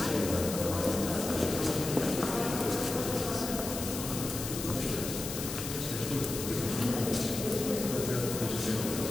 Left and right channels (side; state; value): left; noise; hiss, 6 dB below the sound